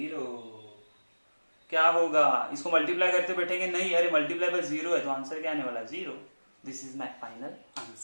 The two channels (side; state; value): both; inverted; correlation -1.00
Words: क्या होगा, इसको मल्टीप्लाई करते बैठेंगे नहीं, अरे मल्टीप्लाई बाय 0 है, तो आंसर क्या आने वाला, 0। This is my final